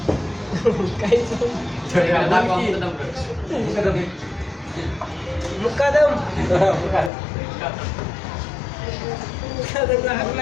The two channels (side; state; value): right; drops out; at 7.1 s